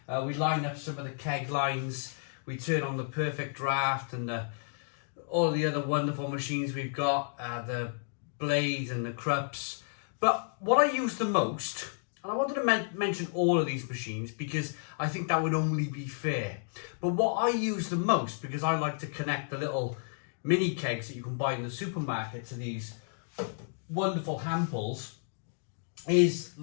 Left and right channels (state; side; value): silent; right; digital silence